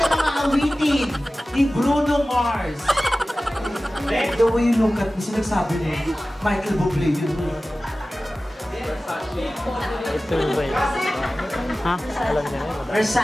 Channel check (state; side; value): normal; both; correlation 0.96